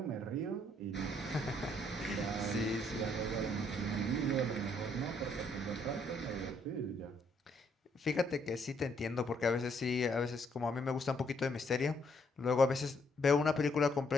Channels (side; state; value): both; normal; correlation 0.70